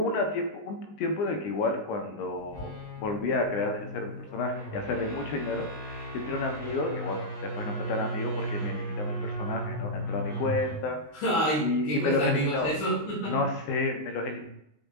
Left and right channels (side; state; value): right; late; 19 ms